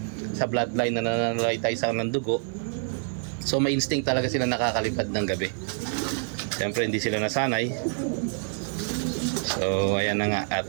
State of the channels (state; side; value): silent; left; 57 dB below the other